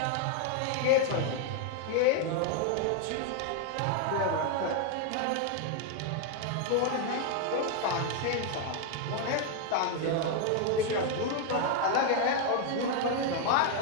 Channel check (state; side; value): different; both; correlation 0.00